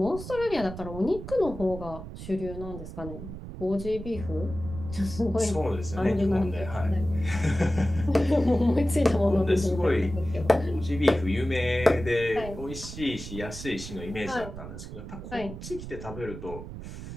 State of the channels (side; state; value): right; noise; rumble, 10 dB below the sound